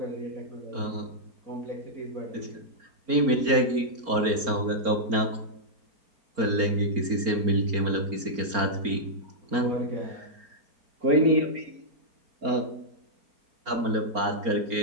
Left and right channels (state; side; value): late; left; 4.4 ms